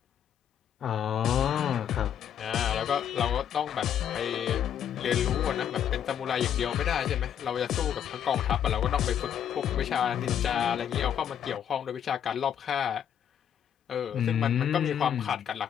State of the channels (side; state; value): right; quieter; 9.3 dB